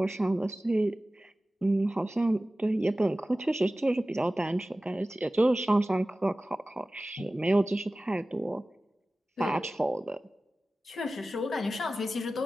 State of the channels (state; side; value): normal; both; correlation 0.96